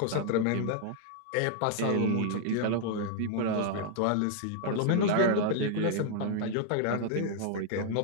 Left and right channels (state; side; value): different; both; correlation 0.00